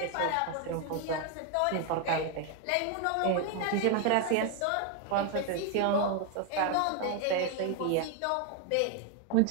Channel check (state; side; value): different; both; correlation 0.01